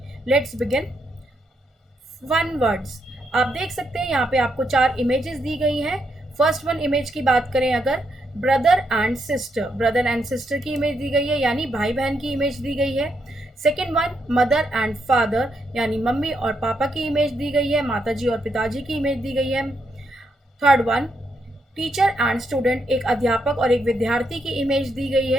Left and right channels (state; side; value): normal; both; correlation 0.79